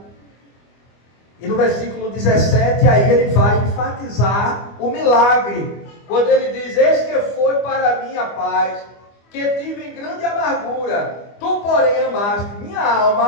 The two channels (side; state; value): right; late; 25 ms